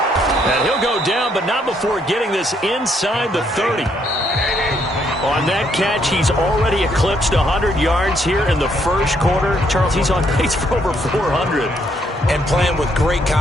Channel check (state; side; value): normal; both; correlation 0.71